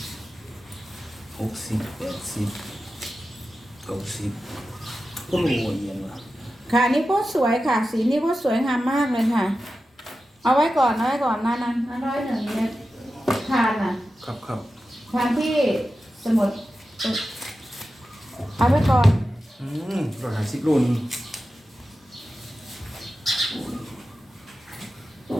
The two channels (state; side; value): normal; both; correlation 0.92